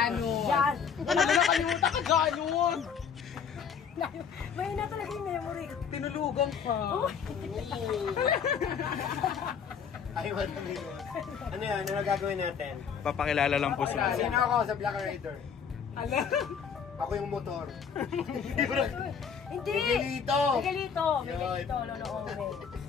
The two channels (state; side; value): quieter; right; 6.8 dB